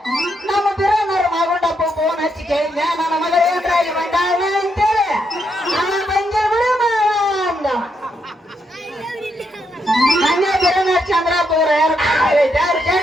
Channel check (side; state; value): both; normal; correlation 0.79